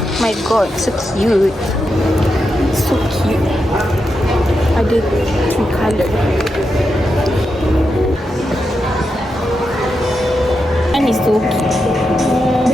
My god, so cute. So cute. Ada 3 colour. And it's so cute.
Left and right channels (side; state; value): both; normal; correlation 0.86